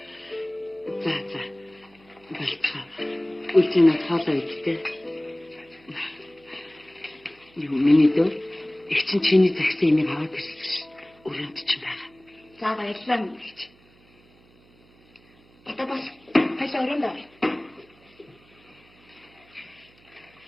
За. Болцоо. Үлцэнэ хаалаа идтэй. Юу миний дөө? Их чинь чиний загсан имийг аваад ирсэн ш. Өрөөнд чинь байгаа. За баярлалаа мэгч. Одоо бас хайлаа өрөөнд авъя.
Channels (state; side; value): noise; right; hum, 29 dB below the sound